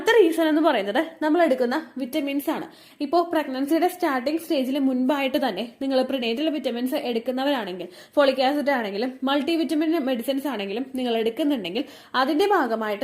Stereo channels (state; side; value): identical; both; correlation 1.00